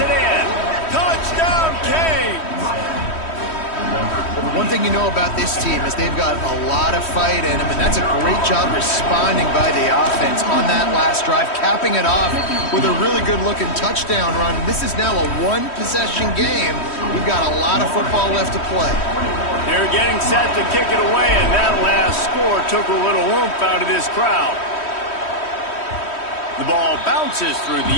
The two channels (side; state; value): right; late; 3.1 ms